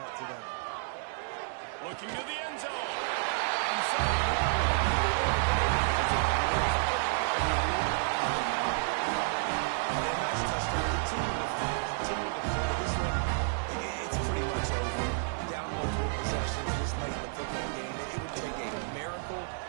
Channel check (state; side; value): silent; left; digital silence